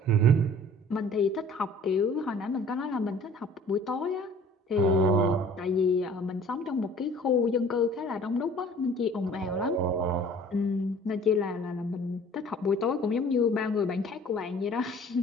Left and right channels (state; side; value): normal; both; correlation 0.50